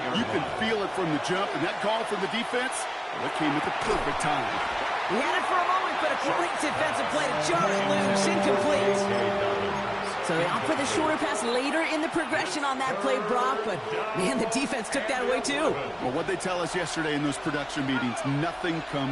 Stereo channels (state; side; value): identical; both; correlation 1.00